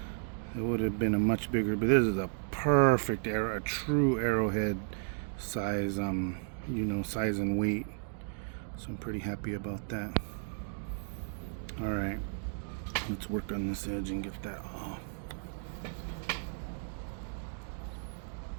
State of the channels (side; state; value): left; silent; digital silence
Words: It would have been a much bigger, but this is a perfect arrow, a true arrowhead size, size and weight. So I'm pretty happy about that. All right, let's work on this edge and get that off.